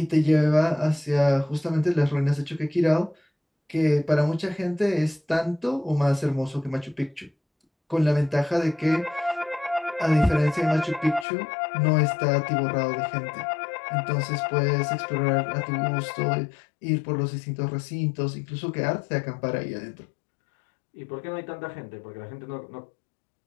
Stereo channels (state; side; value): drops out; right; at 11.2 s